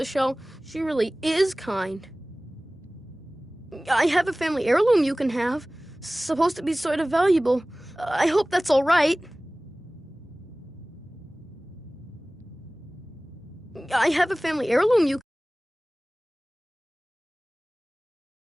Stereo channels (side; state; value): both; normal; correlation 0.98